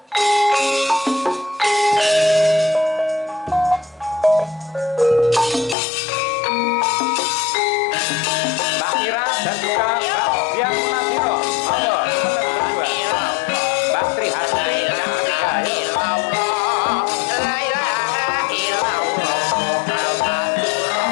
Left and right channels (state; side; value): drops out; right; at 5.8 s